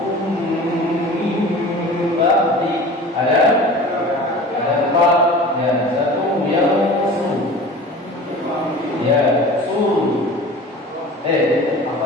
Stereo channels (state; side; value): normal; both; correlation 0.39